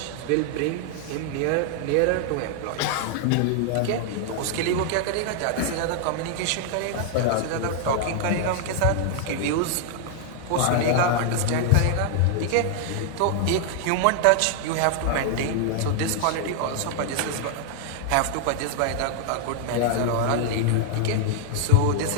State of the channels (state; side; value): different; both; correlation 0.00